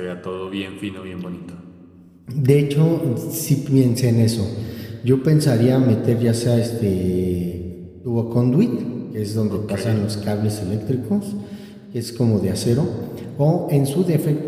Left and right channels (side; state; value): both; identical; correlation 1.00